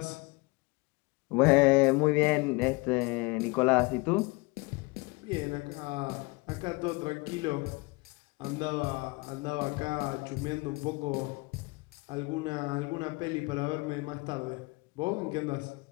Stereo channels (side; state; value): right; quieter; 26.3 dB